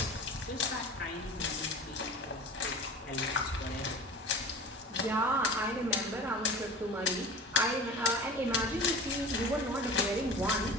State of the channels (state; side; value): normal; both; correlation 0.37